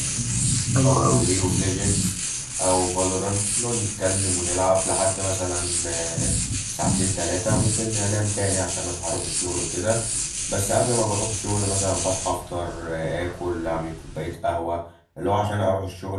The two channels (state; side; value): identical; both; correlation 1.00